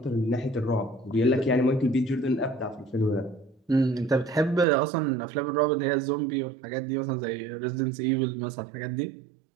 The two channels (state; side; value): drops out; left; at 4.7 s